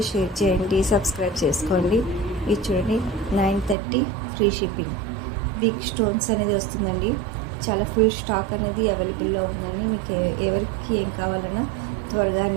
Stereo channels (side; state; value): left; drops out; at 3.8 s